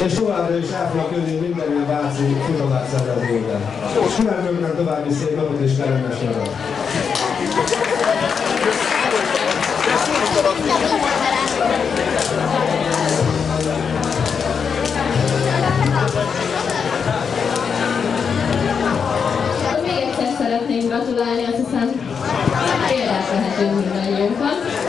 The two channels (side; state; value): right; quieter; 6.3 dB